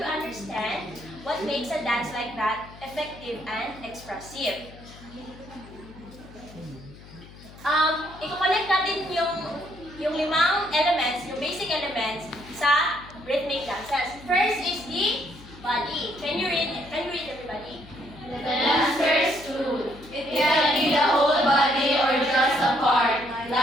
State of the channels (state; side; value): noise; left; hum, 19 dB below the sound